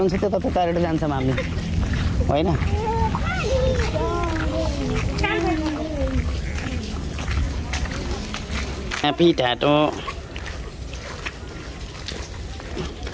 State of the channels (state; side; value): identical; both; correlation 1.00